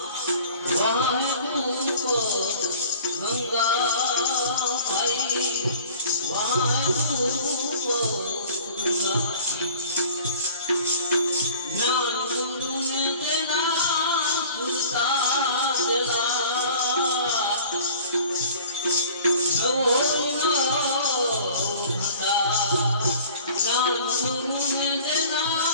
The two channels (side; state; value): both; inverted; correlation -0.47